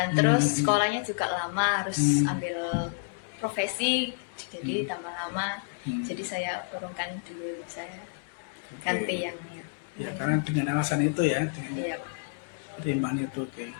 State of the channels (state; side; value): silent; right; digital silence